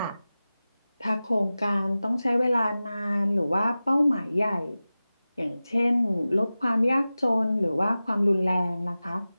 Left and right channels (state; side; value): inverted; both; correlation -0.96